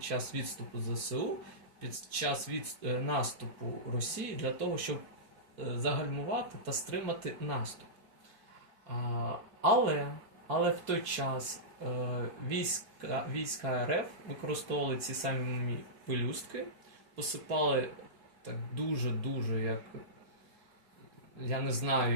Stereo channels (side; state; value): left; late; 4.3 ms